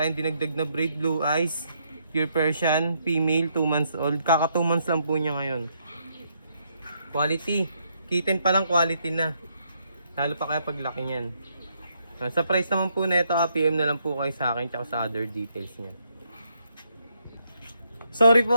dinagdag na braid, blue eyes, pure Persian, female, 2 months old. Kaka 2 months lang po niya ngayon. Quality. Kitten pa lang quality na. Lalo pa kaya paglaki niyan. Sa price naman po na ito, PM na lang po kayo sa akin tsaka sa other details niya. Sorry po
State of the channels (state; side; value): inverted; both; correlation -0.75